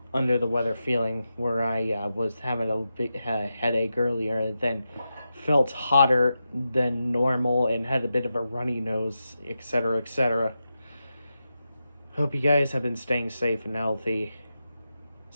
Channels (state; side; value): inverted; both; correlation -0.90